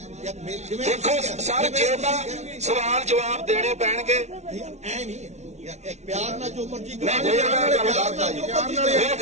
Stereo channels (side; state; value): left; late; 0.32 ms